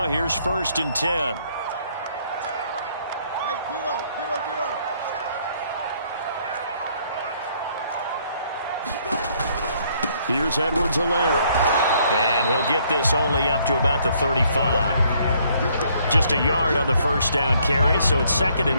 here's 1st and 10. Here's Edwards-Helaire. And he'll get this only up to about the 35. Just a yard on the 1st down carry, so it's 2nd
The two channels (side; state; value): both; inverted; correlation -0.66